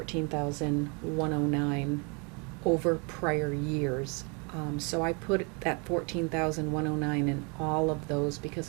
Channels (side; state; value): left; quieter; 33.1 dB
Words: over prior years. So I put that 14,109 in all of those